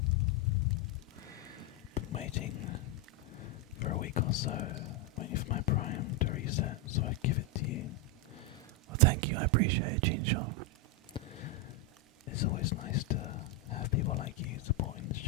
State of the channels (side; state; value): both; normal; correlation 0.03